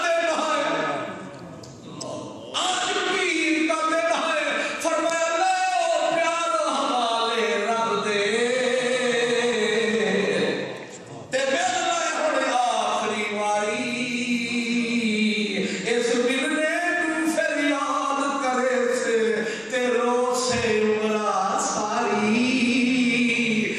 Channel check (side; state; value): both; identical; correlation 1.00